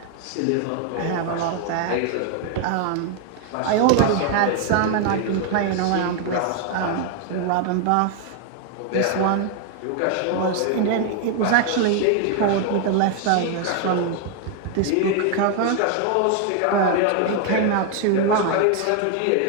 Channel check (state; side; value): different; both; correlation 0.00